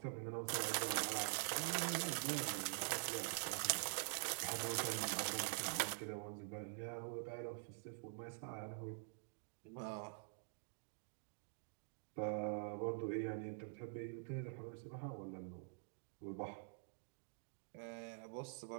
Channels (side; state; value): left; silent; digital silence